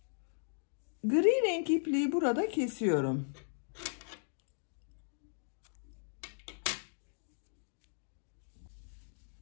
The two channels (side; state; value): right; silent; digital silence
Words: Gri renk ipliği burada kesiyorum.